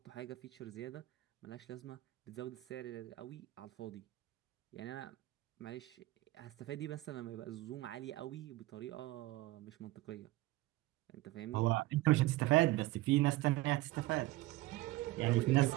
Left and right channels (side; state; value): left; quieter; 18.4 dB